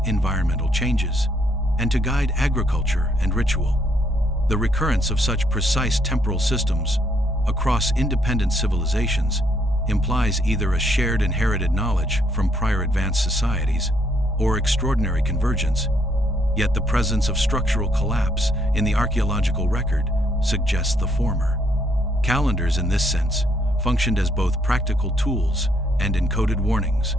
environmental changes, and to guide agriculture and ritual. The recurrence of such precise temporal systems across independent civilizations implies either a shared inherited knowledge from prior advanced societies or extraordinary convergence, yet the presence of structural collapse in the archaeological record suggests the former. Calendars, in this sense, functioned as both practical tools and encoded warnings,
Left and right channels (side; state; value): both; normal; correlation 0.71